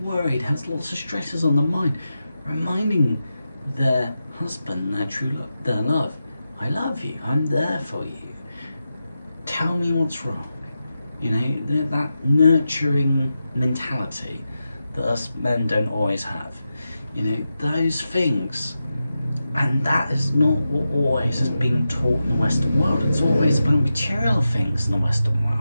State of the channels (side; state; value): both; inverted; correlation -0.90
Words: worried, has lots of stresses on the mind, reminding their husband, their love, I love you, I'm there for you. Tell me what's wrong. You know, that nurturing mentality that us men don't always have. You know, those things. And that is not what always is being taught in the Western world. It's always about material things in the Western world.